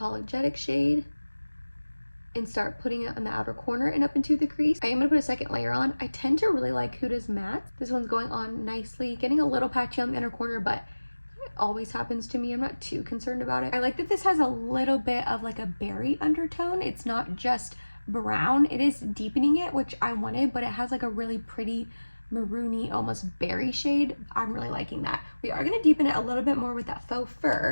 shade and start putting it on the outer corner and up into the crease. I am gonna put a second layer on. I tend to really like Huda's matte. This one's going on nicely, getting a little patchy on the inner corner, but it always happens to me. I'm not too concerned about it. I like that this has a little bit of like a berry undertone. It's not just brown. It is deepening it, which I wanted, but it has like a really pretty maroony, almost berry shade. I'm really liking that. We are gonna deepen it a little bit more with that Faux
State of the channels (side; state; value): both; inverted; correlation -1.00